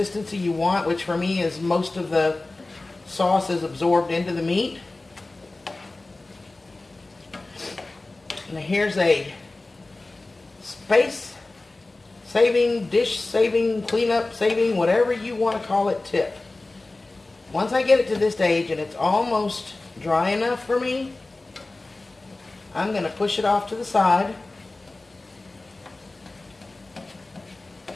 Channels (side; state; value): right; quieter; 3.1 dB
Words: you want, which for me is most of the sauce is absorbed into the meat. Now here's a space saving, dish saving, cleanup saving, whatever you want to call it tip. Once I get it to this stage and it's almost dry enough for me, I'm going to push it off to the side.